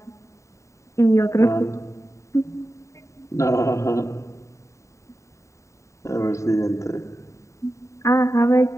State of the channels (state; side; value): late; right; 0.14 ms